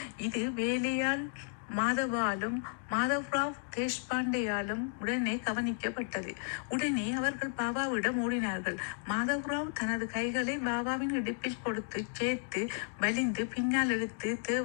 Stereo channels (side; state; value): right; silent; 55 dB below the other